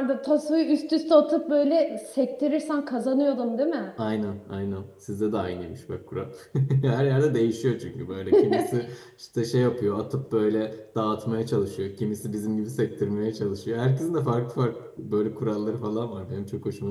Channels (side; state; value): both; identical; correlation 1.00